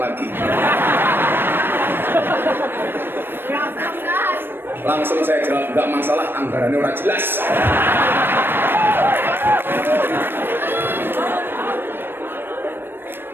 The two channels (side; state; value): left; late; 0.099 ms